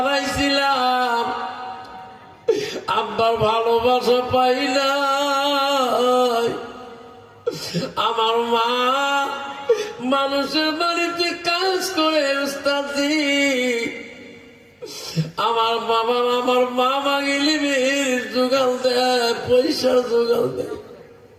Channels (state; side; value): identical; both; correlation 1.00